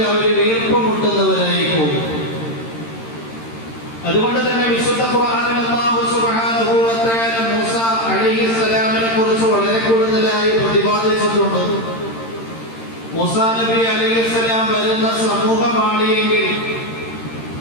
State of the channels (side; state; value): right; late; 13 ms